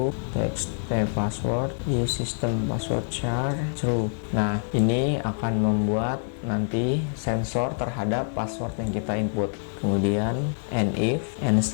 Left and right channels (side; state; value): right; silent; 61 dB below the other